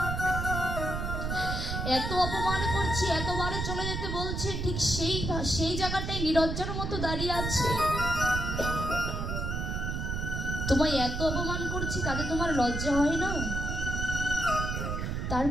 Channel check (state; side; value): noise; right; rumble, 2 dB below the sound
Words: এত অপমান করছি, এতবারে চলে যেতে বলছে, ঠিক সেই জায়গাটাই নিরজ্জার মতো দাঁড়িয়ে আছে। তোমায় এত অপমান করছি তাতে তোমার লজ্জা হয় না?